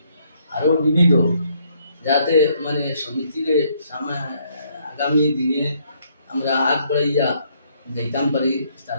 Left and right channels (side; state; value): both; inverted; correlation -0.69